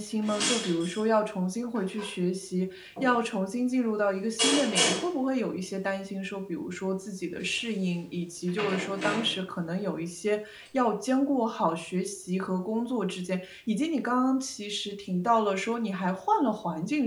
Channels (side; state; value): both; identical; correlation 1.00